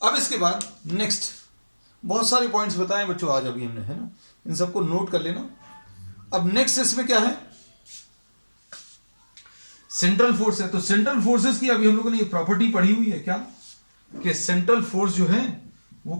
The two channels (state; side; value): inverted; both; correlation -1.00